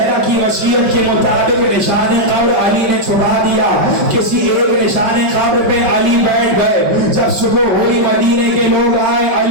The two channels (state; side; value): late; left; 5.3 ms